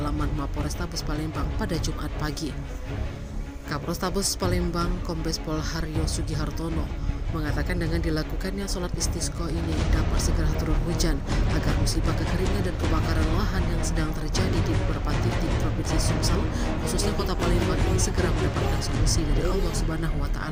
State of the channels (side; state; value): both; identical; correlation 1.00